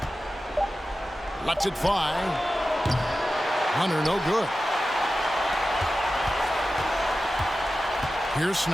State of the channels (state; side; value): normal; both; correlation 0.93